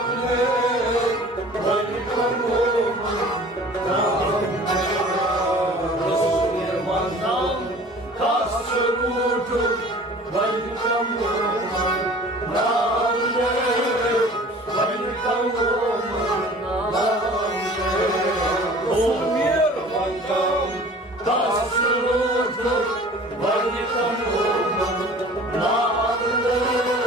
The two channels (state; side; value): normal; both; correlation 0.45